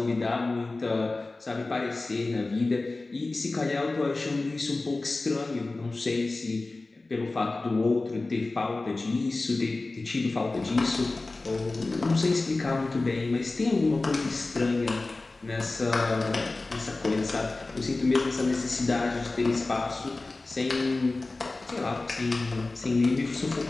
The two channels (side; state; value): right; quieter; 3.3 dB